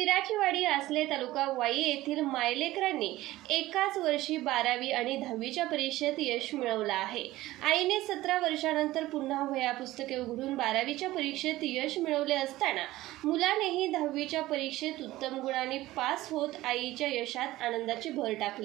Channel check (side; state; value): left; quieter; 16.9 dB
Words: आसले तालुका वाई येथील मायलेकरांनी एकाच वर्षी 12वी आणि 10वीच्या परीक्षेत यश मिळवलं आहे। आईने 17 वर्षांनंतर पुन्हा वह्या पुस्तके उघडून 12वीच्या परीक्षेत यश मिळवले असताना मुलानेही 10वीच्या परीक्षेत उत्तम गुणांनी पास होत आईच्या यशात आनंदाची भर